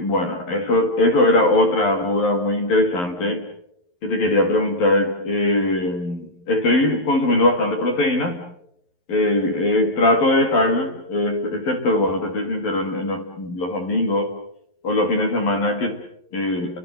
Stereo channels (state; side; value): late; right; 11 ms